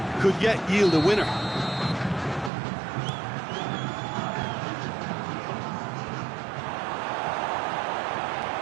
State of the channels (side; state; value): left; drops out; at 2.5 s